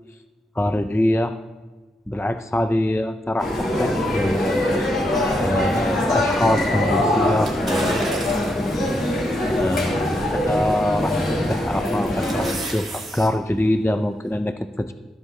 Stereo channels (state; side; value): normal; both; correlation 0.82